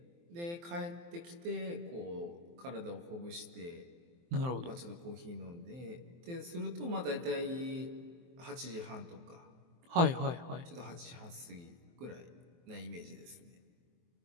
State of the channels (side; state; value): left; late; 23 ms